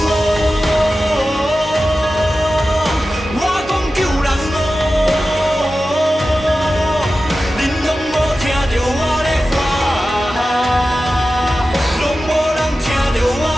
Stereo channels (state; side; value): normal; both; correlation 0.94